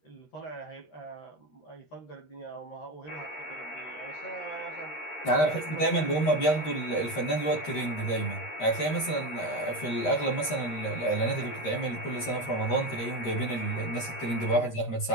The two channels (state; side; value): late; right; 13 ms